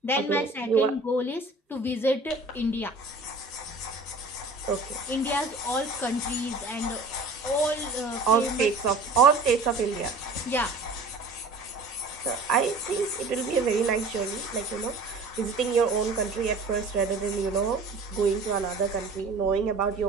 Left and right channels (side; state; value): left; quieter; 3.4 dB